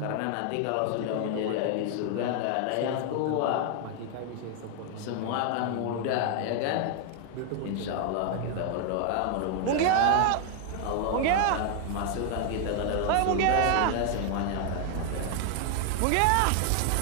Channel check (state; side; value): different; both; correlation 0.00